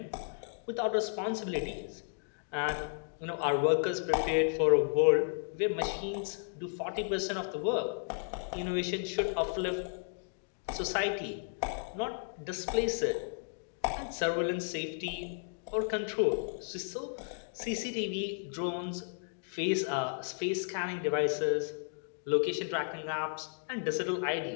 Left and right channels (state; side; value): silent; right; digital silence